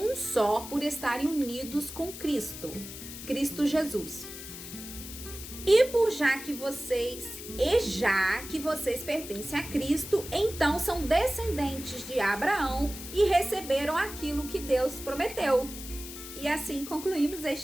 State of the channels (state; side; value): noise; left; hiss, 11 dB below the sound